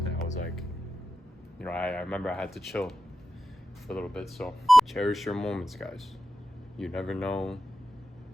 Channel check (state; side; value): normal; both; correlation 0.91